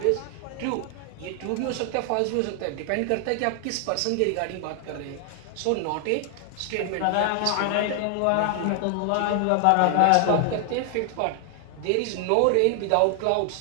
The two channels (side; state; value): both; different; correlation 0.00